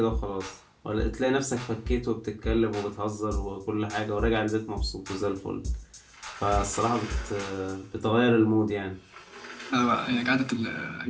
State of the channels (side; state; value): both; identical; correlation 1.00